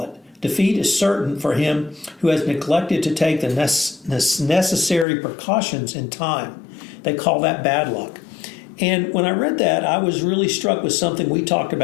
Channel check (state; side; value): drops out; right; at 5.1 s